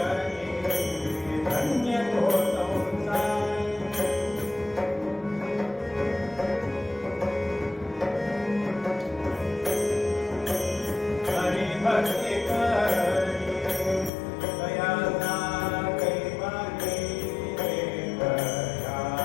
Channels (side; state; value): right; drops out; at 14.1 s